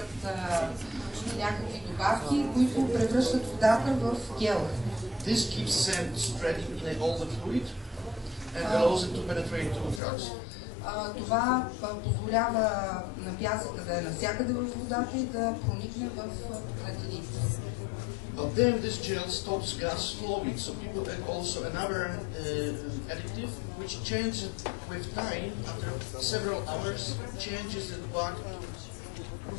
някакви добавки, които превръщат водата в гел. This keeps sand spreading in all the fluid and allows it to penetrate to tracks. Това позволява на пясъка да е навсякъде в водата и да проникне в пукнатините. But then this gel stops gas flowing, so people add also another additive which changes with time, after several hours, changes it back to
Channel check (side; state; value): right; drops out; at 10.0 s